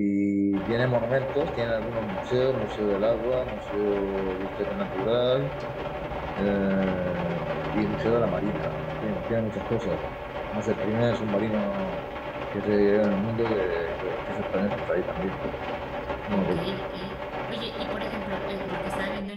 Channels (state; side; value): identical; both; correlation 1.00